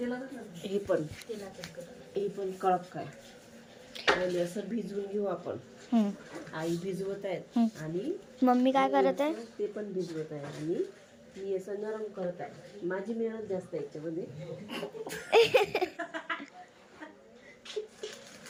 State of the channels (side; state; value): both; identical; correlation 1.00